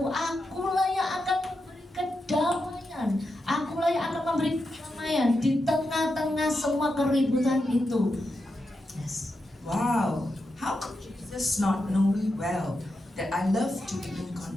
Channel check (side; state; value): both; normal; correlation 0.87